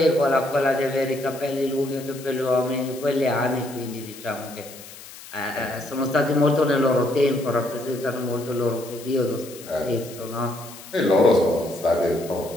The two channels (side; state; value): left; noise; hiss, 17 dB below the sound